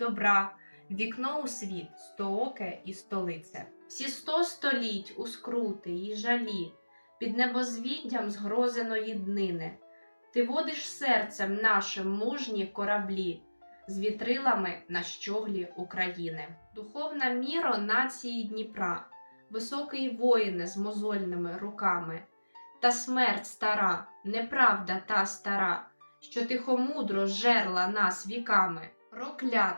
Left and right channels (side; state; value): both; inverted; correlation -1.00